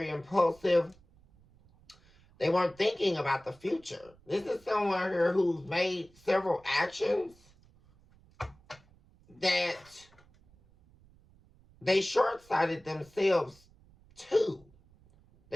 impulsive. They weren't thinking about the future. This is someone here who's made several actions that they short-sighted themselves too.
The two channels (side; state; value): right; noise; rumble, 29 dB below the sound